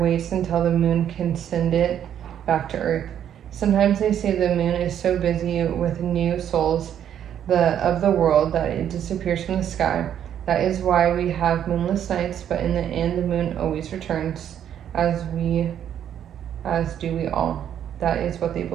waits until the moon can send it back to Earth. Sometimes they say the moon is so busy with new souls of the world that it disappears from the sky. That is why we have moonless nights, but in the end the moon always returns, as do we all. That is what they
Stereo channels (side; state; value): left; quieter; 9.8 dB